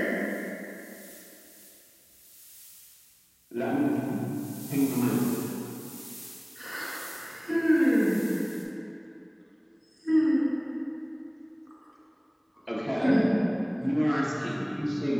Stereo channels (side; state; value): both; identical; correlation 1.00